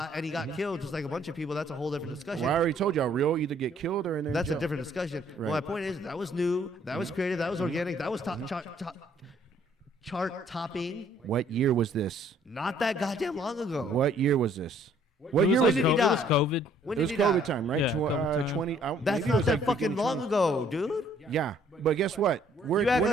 and he got killed just like a bunch of people. That's a whole different discussion. Well, I already told y'all, real either get killed or in there. That's a different discussion. Right. Well, my point is that was new. That was creative. That was organic. That was chart topping. What year was this? Not that goddamn long ago. What year was this? What year was was it? it? He died. It was COVID. When It was did he COVID die? time, right? Yeah, COVID time. 20. That's maybe it not was that like fucking beginning long 20. ago, dude. Yeah, but guess what? You act like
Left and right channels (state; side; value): normal; both; correlation 0.62